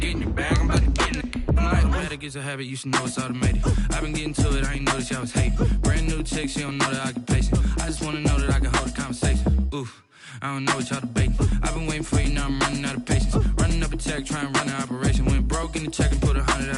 get in your bag, I'm about to get in it. Automatic is a habit, you should know it's automated. I've been getting to it, I ain't noticed y'all was hating. Brand new chick, she don't know the occupation. I just wanna know that I can hold a conversation. Oof, I don't know what y'all debating. I've been waiting for you, now I'm running out of patience. Running up a check, trying to run an operation. Went broke in the check and put 100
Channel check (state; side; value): identical; both; correlation 1.00